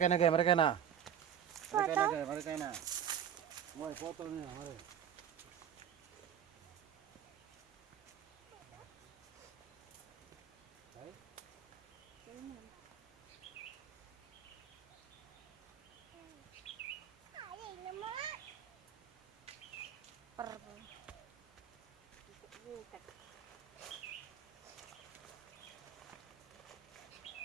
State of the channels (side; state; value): left; quieter; 9.1 dB